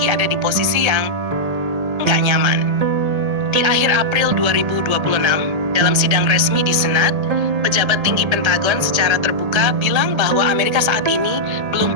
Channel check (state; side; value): late; left; 1.8 ms